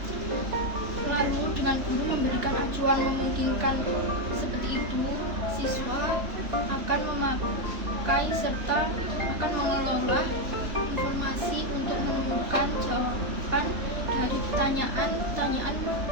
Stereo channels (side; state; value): left; late; 3.3 ms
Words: Lalu dengan guru memberikan acuan memungkinkan seperti itu, siswa akan memakai serta akan mengelola informasi untuk menemukan jawaban dari pertanyaan-pertanyaan